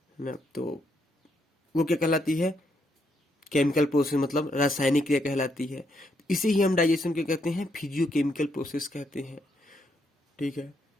है ना, तो वो क्या कहलाती है? केमिकल प्रोसेस, मतलब रासायनिक क्रिया कहलाती है। इसे ही हम डाइजेशन के कहते हैं, फिजियोकेमिकल प्रोसेस कहते हैं। ठीक है,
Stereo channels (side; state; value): both; normal; correlation 0.76